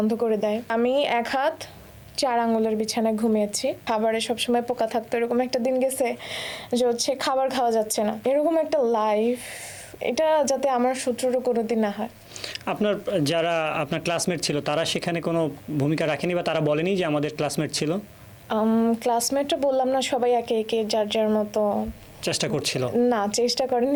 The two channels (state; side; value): identical; both; correlation 1.00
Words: করে দেয়। আমি 1 হাত 4 আঙ্গুলের বিছানায় ঘুমিয়েছি। খাবারে সবসময় পোকা থাকতো, এরকম একটা দিন গেছে যে হচ্ছে খাবার খাওয়া যাচ্ছে না। এরকম একটা লাইফ, এটা যাতে আমার শত্রুরও কোনোদিন না হয়। যারা আপনার ক্লাসমেট ছিল তারা সেখানে কোনো ভূমিকা রাখেনি বা তারা বলেনি যে আমাদের ক্লাসমেট ছিল? ক্লাসমেটটা বললাম না, সবাই একে একে যার যার মতো চেষ্টা করছিল? না, চেষ্টা করেনি,